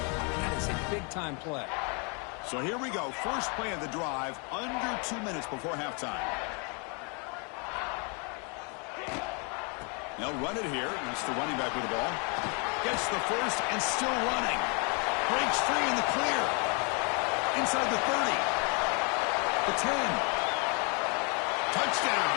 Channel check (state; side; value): quieter; right; 35.1 dB